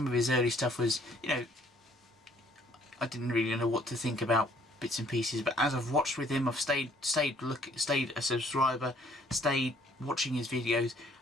of his early stuff was, I didn't really know what to think about bits and pieces, but as I've watched with him, I've stayed a subscriber, stayed watching his videos,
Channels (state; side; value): normal; both; correlation 0.62